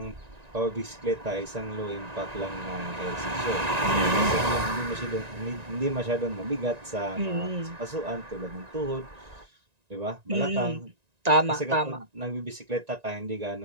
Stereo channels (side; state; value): left; late; 1.9 ms